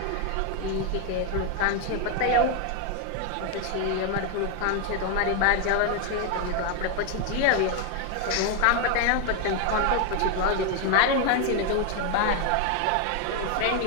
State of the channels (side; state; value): both; different; correlation 0.01